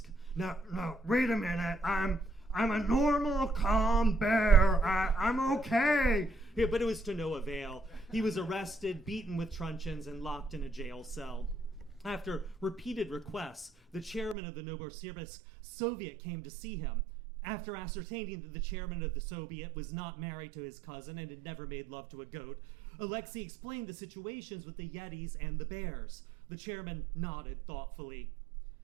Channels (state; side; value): drops out; left; at 14.4 s